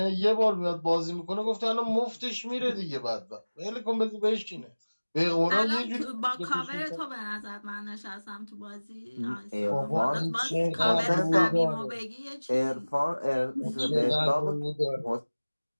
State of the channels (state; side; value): inverted; both; correlation -1.00